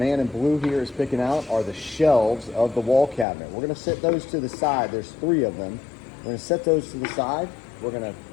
in blue here is picking out are the shelves of the wall cabinet. We're gonna set those to the side. There's three of them. We're gonna set those to the side. We're gonna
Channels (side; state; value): right; drops out; at 3.2 s